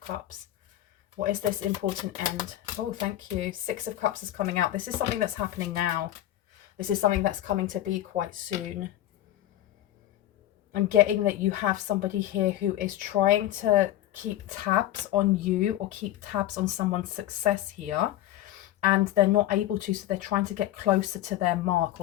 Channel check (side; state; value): right; quieter; 13.6 dB